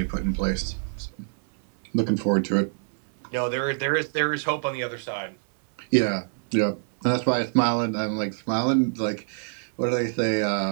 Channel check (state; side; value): silent; left; 61 dB below the other